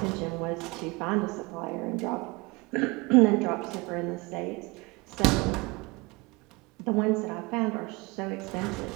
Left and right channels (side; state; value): left; quieter; 25.3 dB